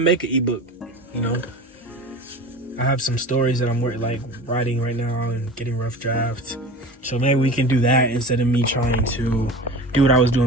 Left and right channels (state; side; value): normal; both; correlation 0.35